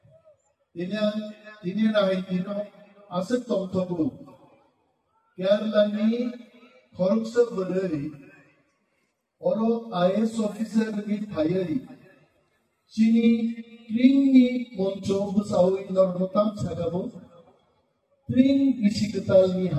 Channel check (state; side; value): identical; both; correlation 1.00